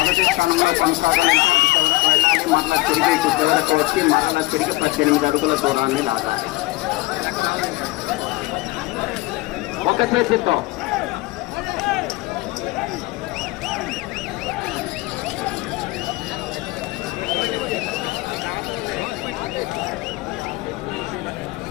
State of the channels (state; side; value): quieter; right; 20.5 dB